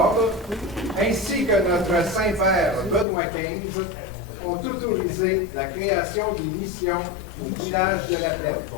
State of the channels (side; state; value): right; drops out; at 3.1 s